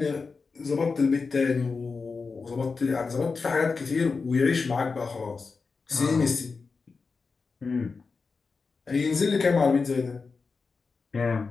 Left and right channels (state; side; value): quieter; right; 4.6 dB